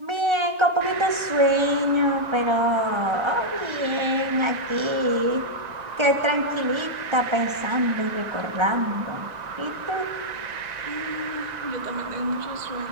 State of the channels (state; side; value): late; left; 1.3 ms